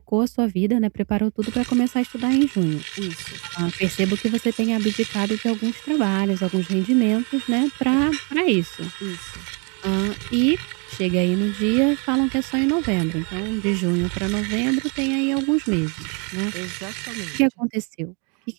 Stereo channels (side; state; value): left; quieter; 34.6 dB